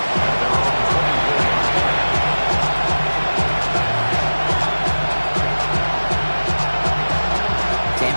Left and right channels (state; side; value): inverted; both; correlation -1.00